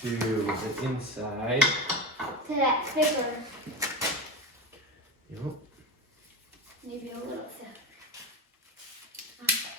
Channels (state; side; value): normal; both; correlation 0.23